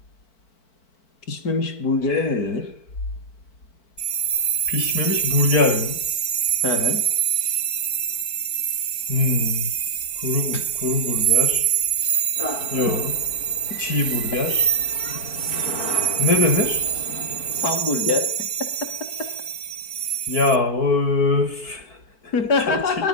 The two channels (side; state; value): right; late; 4.5 ms